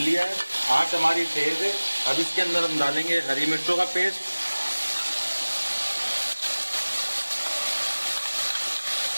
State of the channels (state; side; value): inverted; both; correlation -1.00